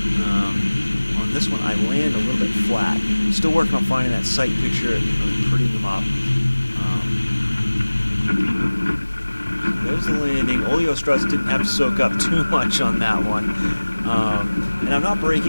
On this one, I land a little bit flat. Still working on finding that sight picture and really prettying them up. There's the landing. Oleo struts didn't have to soak up too much on that one. And I'm not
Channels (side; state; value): both; inverted; correlation -1.00